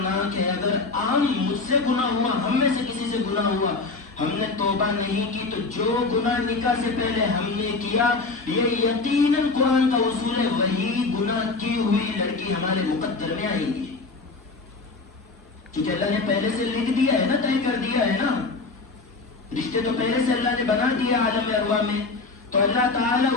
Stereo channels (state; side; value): quieter; right; 3.8 dB